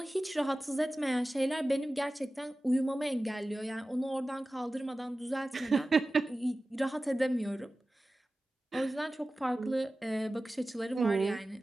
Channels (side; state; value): both; normal; correlation 0.96